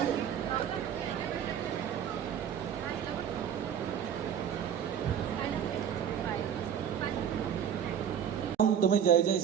तुम्ही जय जय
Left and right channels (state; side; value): quieter; left; 8.6 dB